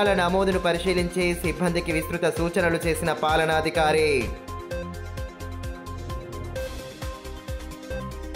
నమోదును పరిశీలించి సిబ్బందికి విస్తృత సూచనలు చేసిన పాలనాధికారి.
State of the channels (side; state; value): both; identical; correlation 1.00